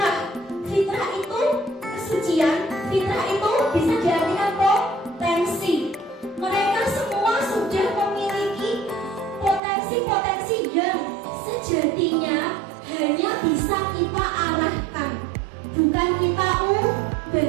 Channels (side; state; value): left; drops out; at 9.6 s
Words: Fitrah itu kesucian, fitrah itu bisa diartikan potensi. Mereka semua sudah memiliki potensi-potensi yang sejatinya hanya bisa kita arahkan, bukan kita